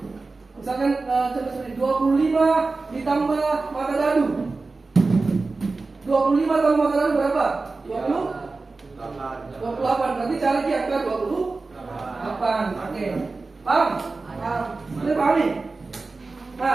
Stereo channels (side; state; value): left; quieter; 3.7 dB